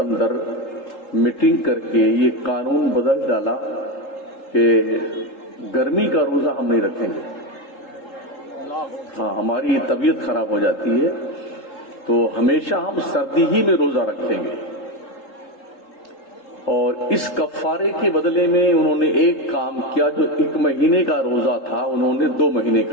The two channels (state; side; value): late; right; 3.7 ms